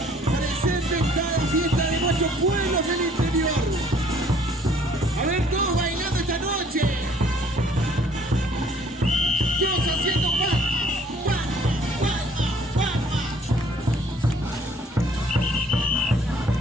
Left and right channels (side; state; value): both; normal; correlation 0.59